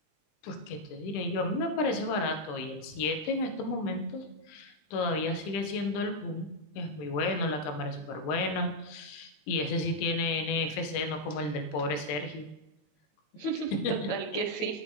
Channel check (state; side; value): late; right; 20 ms